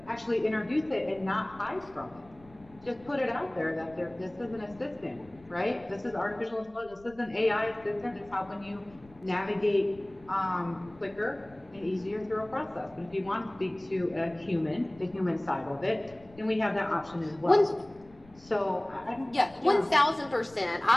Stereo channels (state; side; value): noise; left; rumble, 25 dB below the sound